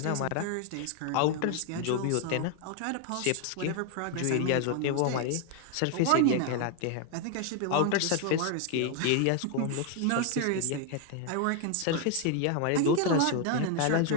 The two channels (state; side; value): different; both; correlation 0.00